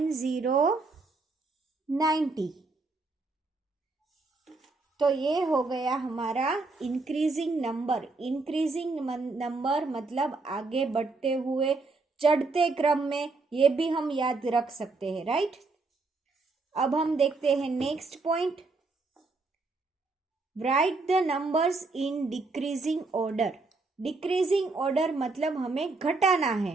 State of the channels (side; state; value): left; quieter; 3.7 dB